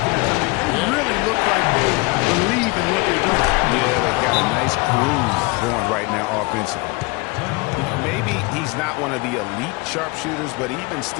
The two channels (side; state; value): right; quieter; 25.8 dB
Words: I mean, they really look like they believe in what they're doing. Yeah, they've got a nice groove going right now offensively. Maybe he's not one of the elite sharpshooters, but even